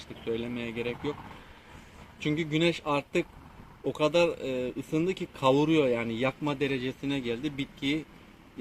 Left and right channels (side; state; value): both; identical; correlation 1.00